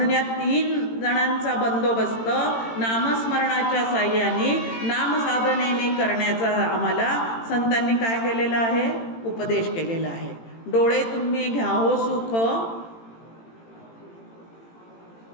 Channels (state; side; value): late; right; 18 ms